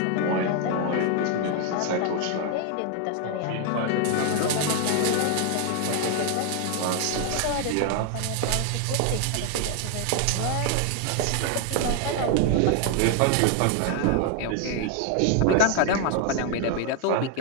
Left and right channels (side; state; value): both; different; correlation 0.01